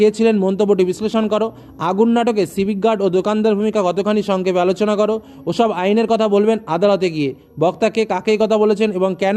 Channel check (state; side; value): identical; both; correlation 1.00